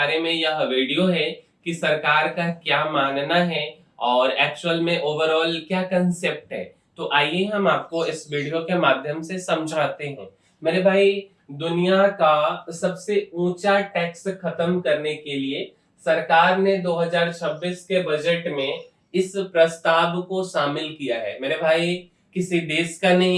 में यह वीडियो है कि सरकार का क्या मानना है और एक्चुअल में ओवरऑल क्या कंसेप्ट है। तो आइए हम आपको इस वीडियो के माध्यम से समझाते हैं। मेरे भाई, दुनिया का सबसे ऊंचा टैक्स खत्म करने के लिए सरकार ने 2026 के बजट में इस प्रस्ताव को शामिल किया है। मेरे भाई, किसी देश का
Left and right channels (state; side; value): identical; both; correlation 1.00